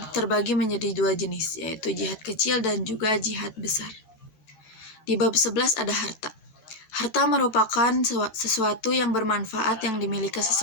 terbagi menjadi dua jenis, yaitu jihad kecil dan juga jihad besar. Di bab 11 ada harta. Harta merupakan sesuatu yang bermanfaat yang dimiliki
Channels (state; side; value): late; right; 14 ms